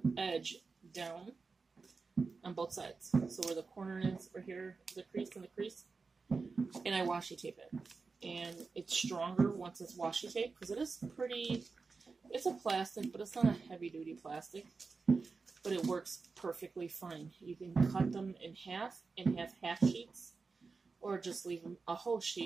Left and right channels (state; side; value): quieter; left; 4.4 dB